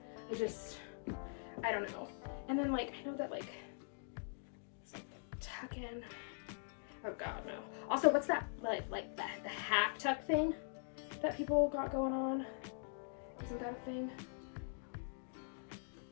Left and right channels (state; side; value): silent; right; digital silence